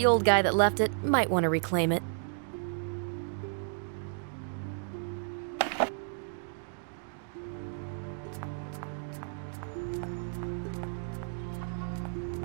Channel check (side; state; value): left; silent; 56 dB below the other